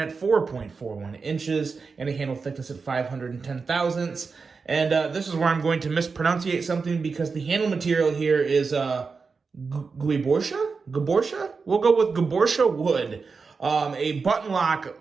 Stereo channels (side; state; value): left; quieter; 4.8 dB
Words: 4.41 inches, and a handle thickness at 510 thousandths. And this is where I'm going to mispronunciate something because the handle material here is Gaborsha? We'll go with Gaborsha wood. A button